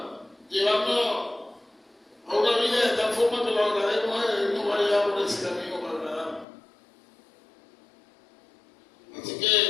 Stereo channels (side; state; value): right; drops out; at 6.5 s